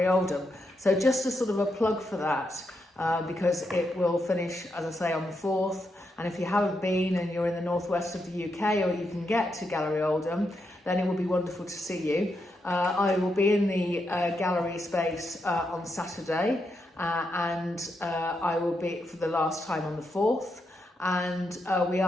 Oldham. So just a sort of a plug for that, because it will finish, as I say, on the 4th. And if you haven't been and you're in the northwest of the UK, or you can get to Gallery Oldham, then it will be wonderful to see you. I will be in the gallery space on Saturday. And I will be for the last time on the 4th, and we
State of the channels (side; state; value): both; normal; correlation 0.83